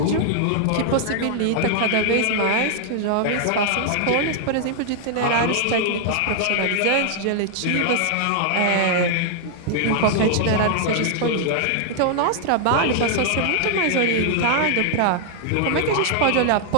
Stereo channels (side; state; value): both; different; correlation 0.00